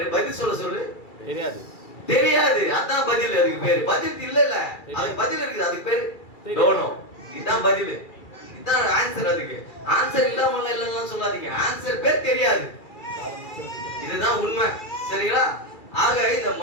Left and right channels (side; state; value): right; late; 2.3 ms